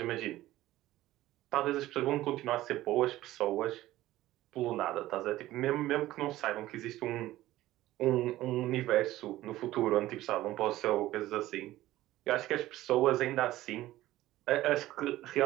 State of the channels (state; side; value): quieter; left; 15.7 dB